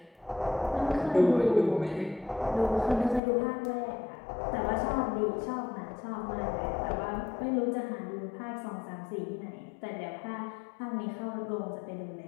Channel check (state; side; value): drops out; right; at 3.2 s